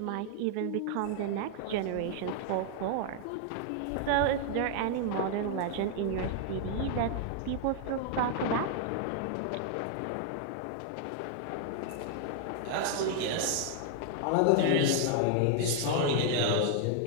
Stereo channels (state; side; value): different; both; correlation 0.00